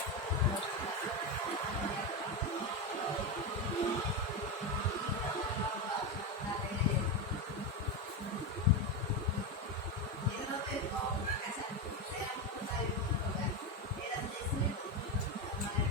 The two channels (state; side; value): normal; both; correlation 0.13